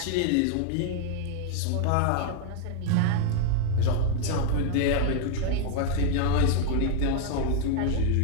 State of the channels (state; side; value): different; both; correlation 0.00